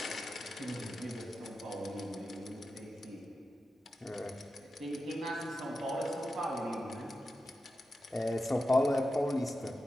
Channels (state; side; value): normal; both; correlation 0.91